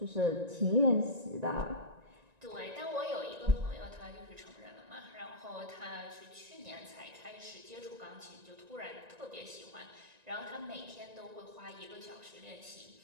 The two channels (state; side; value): late; left; 1.9 ms